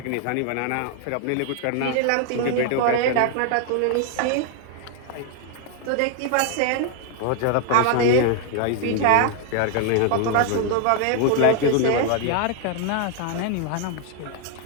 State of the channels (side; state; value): both; different; correlation 0.00